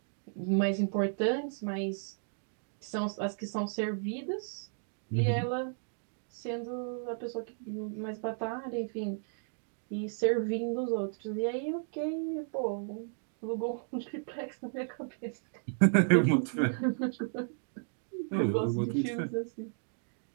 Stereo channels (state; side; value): silent; left; digital silence